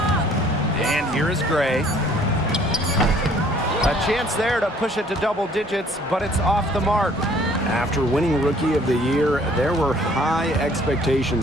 And here is Gray. A chance there to push it to double digits, but it's off the mark. After winning Rookie of the Year, there were high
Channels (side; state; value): both; normal; correlation 0.58